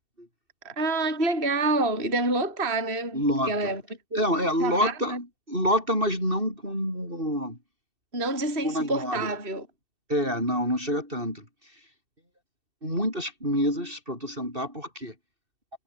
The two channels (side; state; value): left; late; 2.7 ms